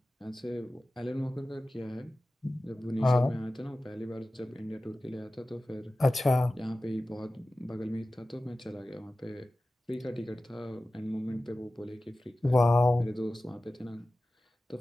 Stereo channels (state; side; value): normal; both; correlation 0.96